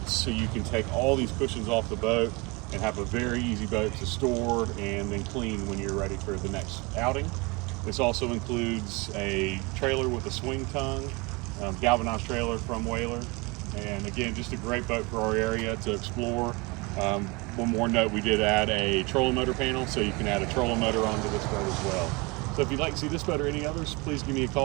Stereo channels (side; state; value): left; quieter; 26.9 dB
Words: so you can take all these cushions off the boat and have a very easy boat to store and then clean when you're ready for the next outing. This also includes a trailer with a swing tongue, galvanized trailer from Whaler, and again, just a great boat for our area to explore. One more note, we did add a trolling motor panel, so you can add a trolling motor onto this boat as well. So if you'd like to see this boat or any others, please give me a